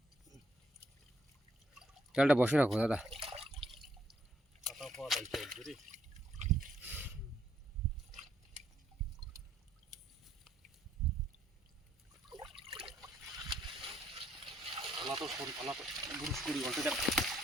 জালটা বসে রাখো দাদা। বুরুশ করি বলতে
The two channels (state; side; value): normal; both; correlation 0.70